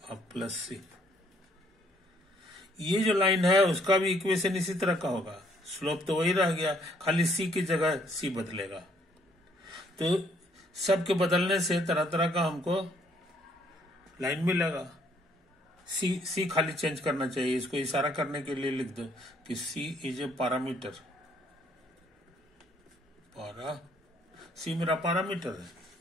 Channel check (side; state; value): both; normal; correlation 0.65